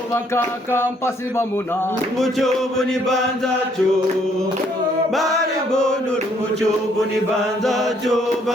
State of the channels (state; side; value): normal; both; correlation 0.67